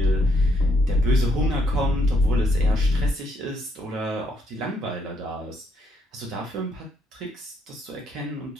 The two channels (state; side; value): normal; both; correlation 0.73